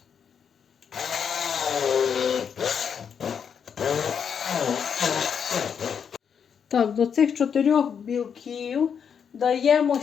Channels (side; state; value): right; quieter; 7.2 dB